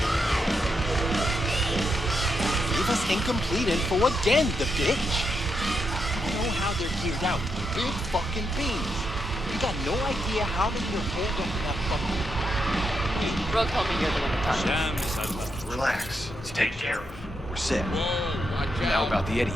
Gave us incomplete info again, the bitch. I know how they're geared out. Big fucking beans. You got no idea how they can hold up that fucking... Bro told me you're the one to talk to. Relax. It's taken care of. We're set. Whoa, watch Now out. about the Eddies.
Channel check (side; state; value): both; normal; correlation 0.83